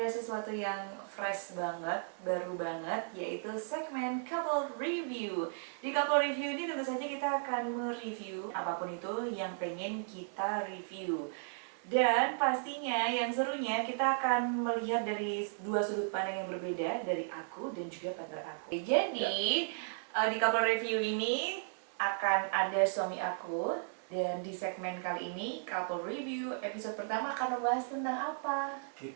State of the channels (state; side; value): silent; left; digital silence